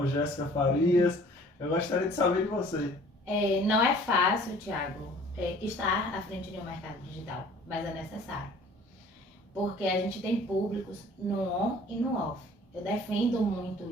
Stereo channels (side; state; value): both; normal; correlation 0.51